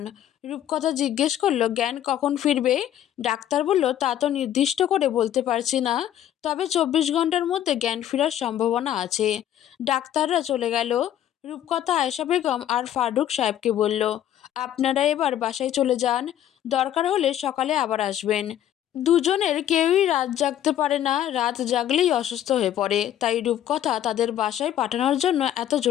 রূপকথা জিজ্ঞেস করলো, জ্ঞান কখন ফিরবে? ডাক্তার বলল, তা তো নির্দিষ্ট করে বলতে পারছি না, তবে 24 ঘন্টার মধ্যে জ্ঞান ফেরার সম্ভাবনা আছে। ডাক্তাররা চলে গেল। রূপকথা আয়েশা বেগম আর ফারুক সাহেবকে বলল, আপনারা এবার বাসায় চলে যান, দরকার হলে সকালে আবার আসবেন। দুজনের কেউই রাত জাগতে পারে না, রাত জাগলেই অসুস্থ হয়ে পড়ে, তাই রূপকথা তাদের বাসায় পাঠানোর জন্য এত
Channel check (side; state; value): right; quieter; 11.3 dB